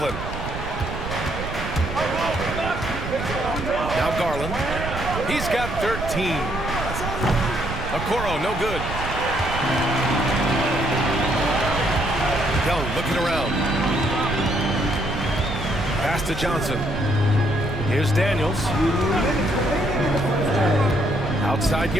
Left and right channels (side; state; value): right; noise; rumble, 7 dB below the sound